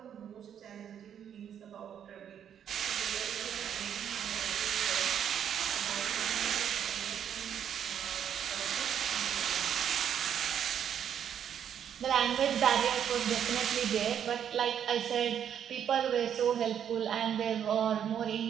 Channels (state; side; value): quieter; left; 9.0 dB